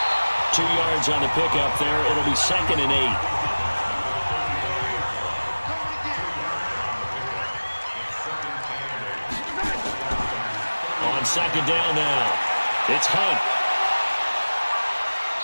2 yards on the pickup there. It'll be 2nd and 8. On 2nd down now, it's Hunt.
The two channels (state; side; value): inverted; both; correlation -1.00